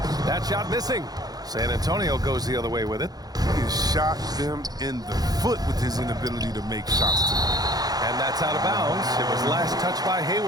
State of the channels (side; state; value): left; late; 0.19 ms